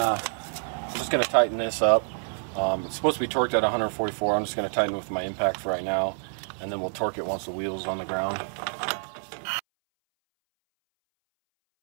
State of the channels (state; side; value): silent; left; 60 dB below the other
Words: just going to tighten this up. It's supposed to be torqued at 144. I'm just going to tighten it with my impact for right now. And then we'll torque it once the wheel's on the ground.